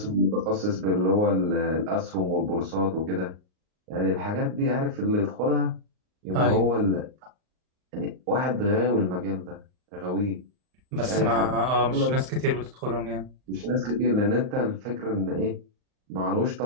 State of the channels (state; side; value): late; left; 38 ms